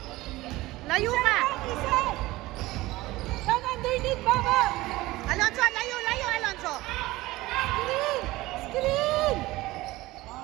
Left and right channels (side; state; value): left; quieter; 18.9 dB